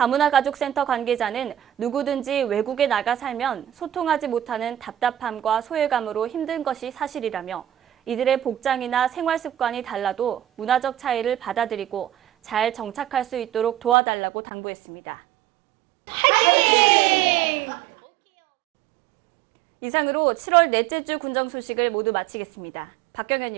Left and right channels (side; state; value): left; drops out; at 14.0 s